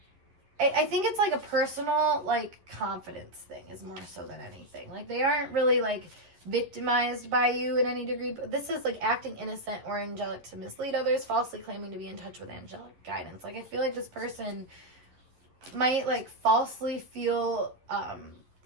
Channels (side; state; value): left; late; 11 ms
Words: I think it's like a personal like confidence thing is more so than anything. Like they aren't really like victimized by you in any degree, but this is like acting innocent or angelic to mislead others, falsely claiming to be in touch with angelic guidance. Like I feel like this person might like falsely feel